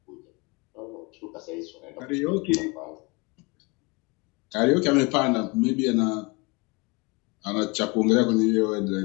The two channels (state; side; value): quieter; right; 27.6 dB